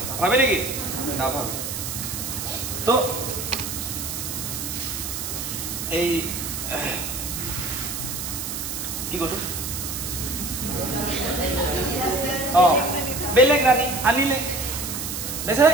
ভাবে নেকি নাভাবে তো এই কি কৰো বেলেগ ৰাণী আনিলে বেচাৰা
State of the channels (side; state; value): right; noise; hiss, 5 dB below the sound